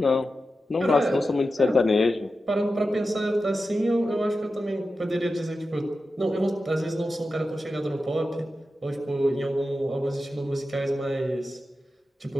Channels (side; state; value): both; normal; correlation 0.91